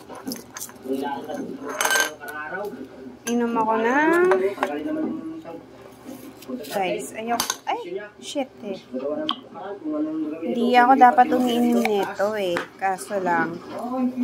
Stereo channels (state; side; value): identical; both; correlation 1.00